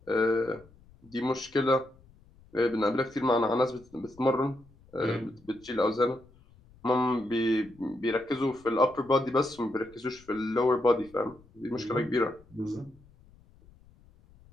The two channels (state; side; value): noise; left; rumble, 27 dB below the sound